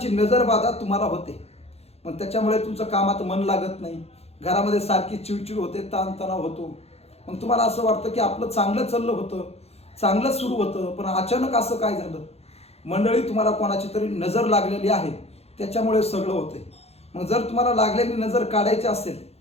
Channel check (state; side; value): late; right; 0.30 ms